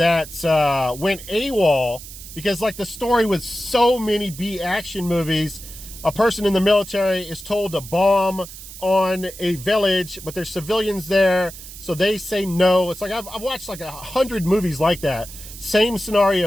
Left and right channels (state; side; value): noise; right; hiss, 14 dB below the sound